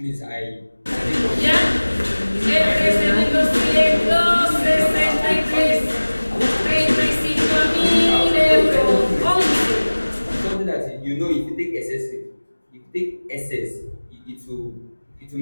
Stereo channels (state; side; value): inverted; both; correlation -1.00